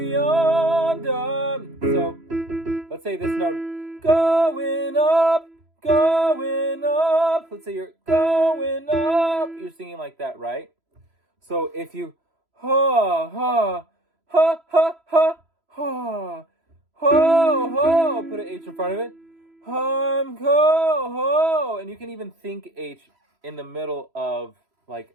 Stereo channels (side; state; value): left; late; 3.0 ms